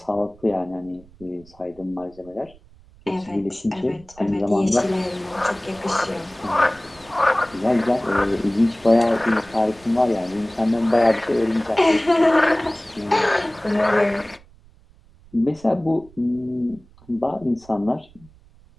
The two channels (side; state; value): right; noise; rumble, 26 dB below the sound